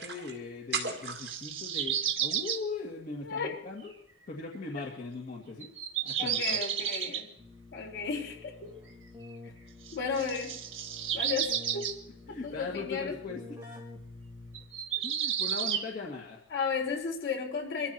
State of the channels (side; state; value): both; normal; correlation 0.05